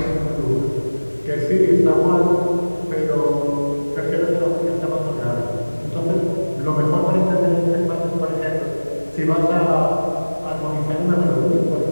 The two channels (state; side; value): inverted; both; correlation -1.00